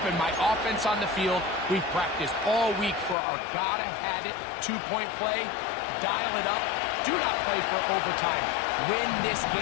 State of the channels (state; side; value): drops out; right; at 3.2 s